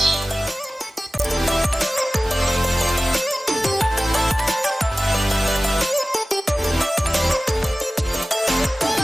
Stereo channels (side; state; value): both; normal; correlation 0.96